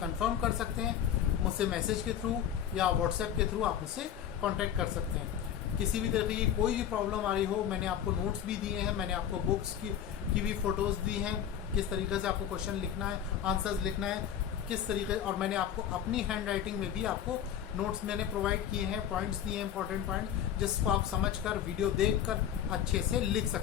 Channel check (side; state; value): right; quieter; 9.7 dB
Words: कर सकते हैं। मुझसे मैसेज के थ्रू या व्हाट्सएप के थ्रू आप मुझसे कांटेक्ट कर सकते हैं। किसी भी तरह की कोई भी प्रॉब्लम आ रही हो, मैंने आपको नोट्स भी दिए हैं, मैंने आपको बुक्स की भी फोटोज दी हैं, किस तरीके से आपको क्वेश्चन लिखना है, आंसर्स लिखना है, किस तरीके, और मैंने आपको अपनी हैंड राइटिंग में भी आपको नोट्स मैंने प्रोवाइड किए हैं, पॉइंट्स दिए हैं, इंपॉर्टेंट पॉइंट्स, जिसको आप समझकर वीडियो देखकर अच्छे से लिख